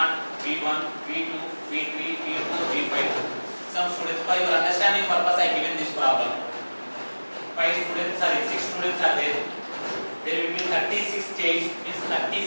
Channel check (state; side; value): inverted; both; correlation -1.00